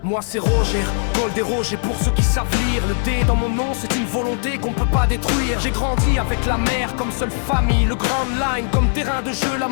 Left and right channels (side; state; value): right; silent; digital silence